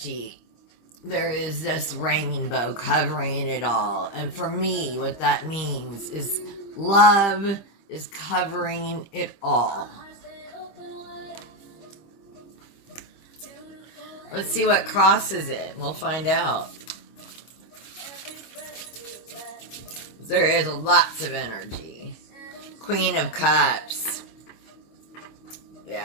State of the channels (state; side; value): late; right; 25 ms